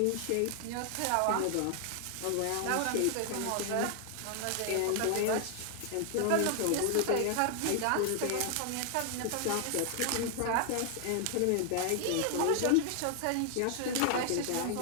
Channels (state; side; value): different; both; correlation 0.00